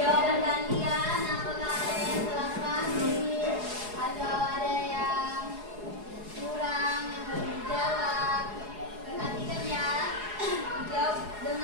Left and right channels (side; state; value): left; late; 4.8 ms